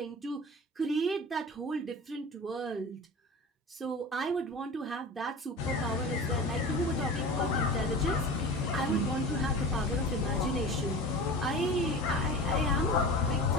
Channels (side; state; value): both; normal; correlation 0.34